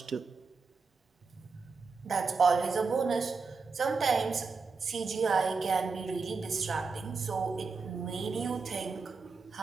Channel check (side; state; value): left; quieter; 4.6 dB